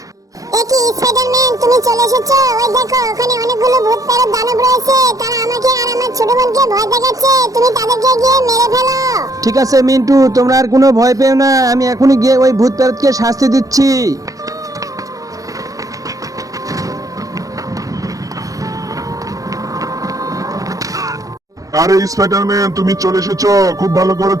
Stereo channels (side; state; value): left; late; 0.17 ms